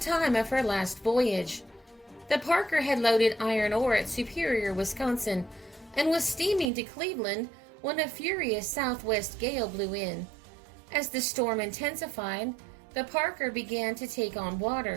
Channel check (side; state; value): left; drops out; at 6.7 s